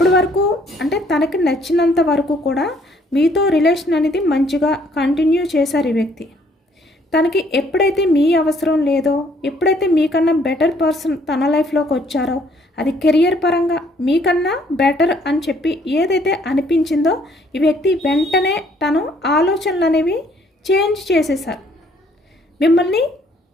వరకు అంటే తనకి నచ్చినంత వరకు కూడా మీతో రిలేషన్ అనేది మంచిగా కంటిన్యూ చేశారు ఈ వ్యక్తి. తనకి ఎప్పుడైతే మీ అవసరం లేదో, ఎప్పుడైతే మీకన్నా బెటర్ పర్సన్ తన లైఫ్లోకి వచ్చారో, అది కెరియర్ పరంగా మీకన్నా బెటర్ అని చెప్పి ఏదైతే అనిపించిందో ఈ వ్యక్తి వెంటనే తను ఆలోచనలు అనేవి చేంజ్ చేసేసారు. మిమ్మల్ని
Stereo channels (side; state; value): both; normal; correlation 0.64